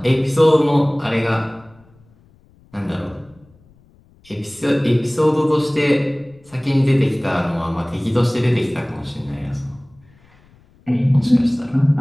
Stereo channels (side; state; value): left; noise; rumble, 30 dB below the sound